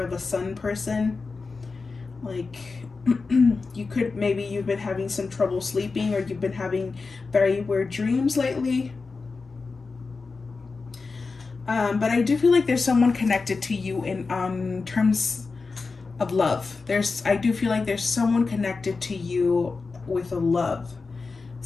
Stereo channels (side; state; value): right; quieter; 4.3 dB